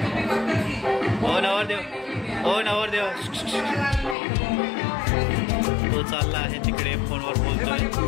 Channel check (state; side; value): drops out; right; at 4.2 s